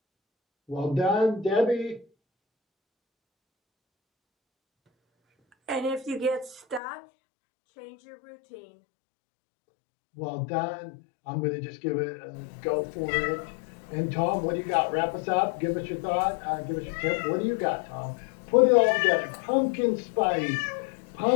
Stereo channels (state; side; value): drops out; right; at 6.8 s